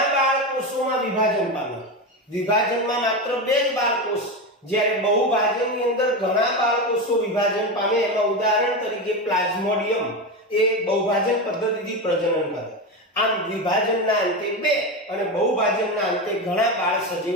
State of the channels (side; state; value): both; normal; correlation 0.17